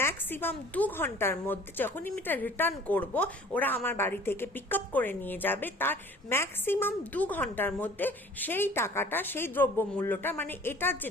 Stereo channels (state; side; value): normal; both; correlation 0.49